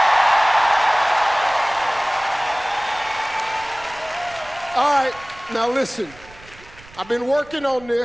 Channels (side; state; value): right; noise; rumble, 22 dB below the sound